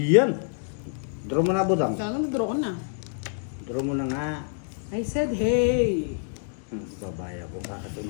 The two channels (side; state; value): right; silent; digital silence